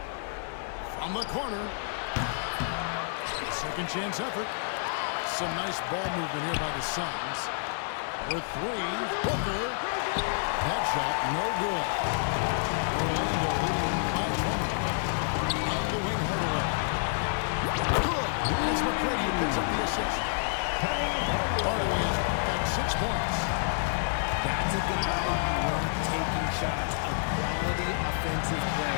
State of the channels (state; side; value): silent; right; digital silence